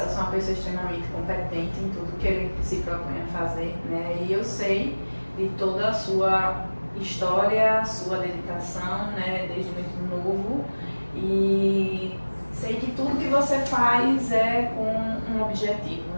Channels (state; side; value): inverted; both; correlation -1.00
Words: é uma pessoa extremamente competente em tudo que ele se propõe a fazer, né? E eu sei de toda a sua história, sua dedicação, né? Desde muito novo, e sei que tudo que você faz é com um objetivo,